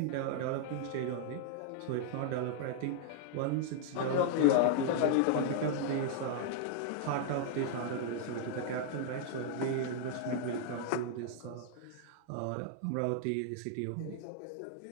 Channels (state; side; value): different; both; correlation 0.00